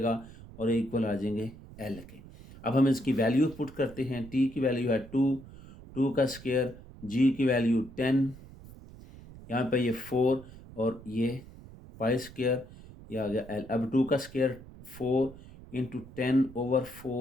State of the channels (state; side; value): noise; right; rumble, 18 dB below the sound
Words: और इक्वल आ जाएंगे एल के। अब हम इसकी वैल्यू पुट करते हैं। टी की वैल्यू है 2, 2 का स्केयर, जी की वैल्यू 10, यहाँ पे ये 4 और ये पाई स्केयर, ये आ गया एल। अब 2 का square 4 into 10 over